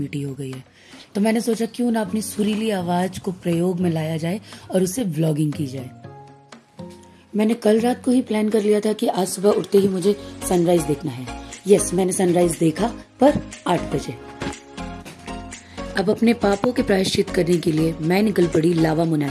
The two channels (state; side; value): identical; both; correlation 1.00